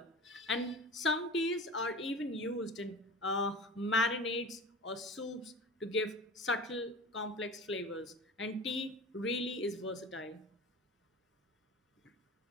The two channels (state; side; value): normal; both; correlation 0.35